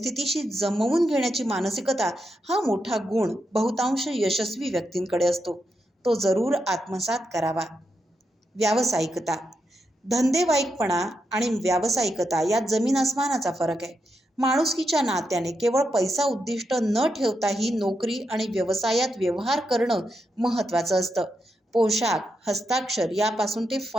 जमवून घेण्याची मानसिकता हा मोठा गुण बहुतांश यशस्वी व्यक्तींकडे असतो. तो जरूर आत्मसात करावा. व्यावसायिकता. धंदेवाईकपणा आणि व्यावसायिकता यात जमीन आसमानाचा फरक आहे. माणुसकीच्या नात्याने केवळ पैसा उद्दिष्ट न ठेवताही नोकरी आणि व्यवसायात व्यवहार करणं महत्त्वाचं असतं. पोशाख, हस्ताक्षर यापासून ते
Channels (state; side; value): normal; both; correlation 0.84